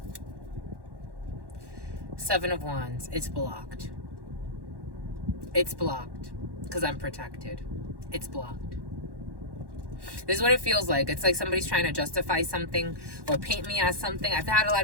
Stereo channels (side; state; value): left; late; 1.1 ms